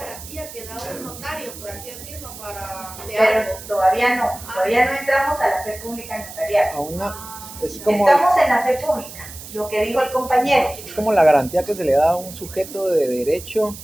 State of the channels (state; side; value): noise; right; hiss, 14 dB below the sound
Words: que da un notario, por así decirlo, para de Pero algo. todavía no entramos a la fe pública notarial. Aún es como, Estamos en la fe pública, lo que dijo el compañero. es como la garantía que se le da a un sujeto de derecho